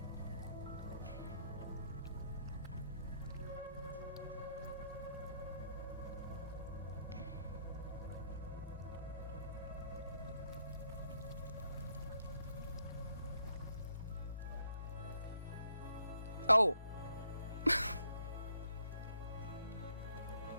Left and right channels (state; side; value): inverted; both; correlation -0.72